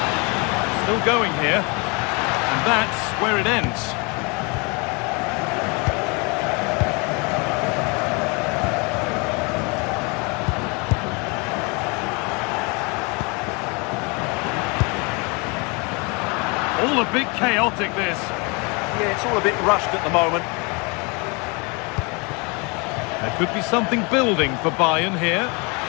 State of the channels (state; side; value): quieter; right; 30.3 dB